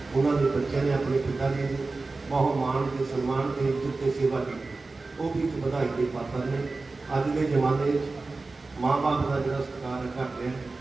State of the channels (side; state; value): left; quieter; 3.6 dB